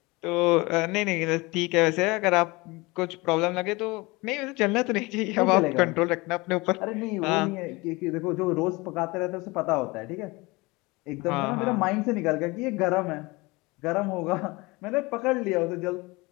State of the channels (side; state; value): right; quieter; 24.0 dB